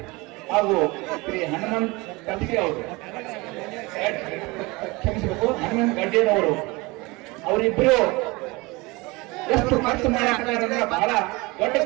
ಹಾಗೂ ಶ್ರೀ ಹನುಮಂತ್ ಕಲ್ಸಿ ಅವರು, ಕ್ಷಮಿಸಬೇಕು, ಹನುಮಂತ್ ಗಡ್ಡೇರವರು, ಅವರಿಬ್ಬರು ಎಷ್ಟು ಖರ್ಚು ಮಾಡಕ್ಕಾರೆ ಅಂದ್ರೆ ಬಹಳ ದೊಡ್ಡ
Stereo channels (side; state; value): left; quieter; 24.2 dB